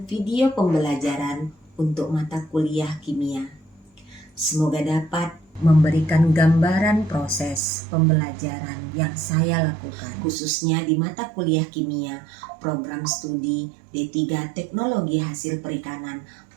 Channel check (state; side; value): drops out; left; at 7.6 s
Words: video pembelajaran untuk mata kuliah kimia. Semoga dapat memberikan gambaran proses pembelajaran yang saya lakukan, khususnya di mata kuliah kimia, program studi D3 Teknologi Hasil Perikanan